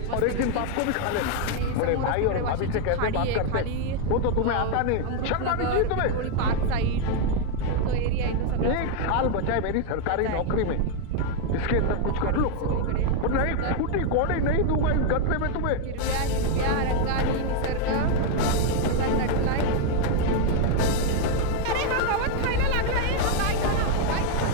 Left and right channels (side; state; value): both; different; correlation 0.00